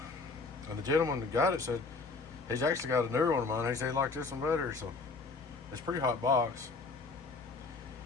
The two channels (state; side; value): quieter; right; 4.1 dB